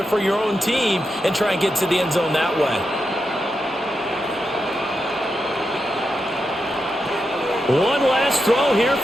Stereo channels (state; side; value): normal; both; correlation 0.87